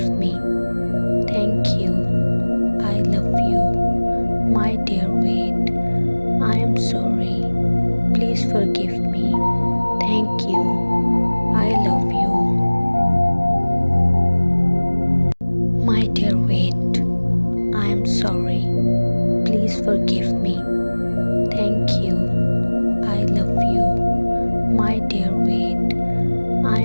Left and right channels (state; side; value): inverted; both; correlation -1.00